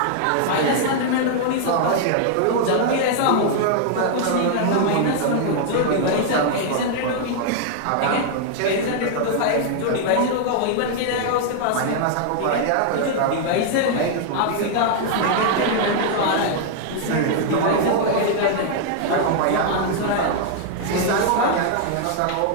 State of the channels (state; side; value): different; both; correlation 0.00